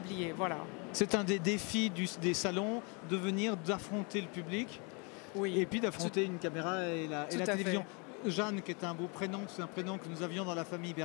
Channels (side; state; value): right; quieter; 32.9 dB